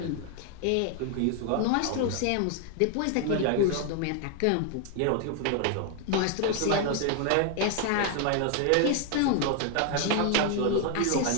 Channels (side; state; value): both; different; correlation 0.00